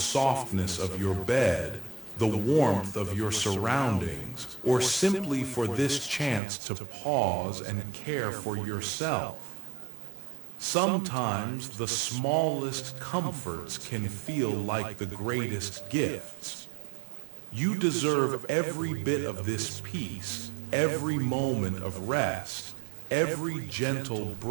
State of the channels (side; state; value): left; drops out; at 6.4 s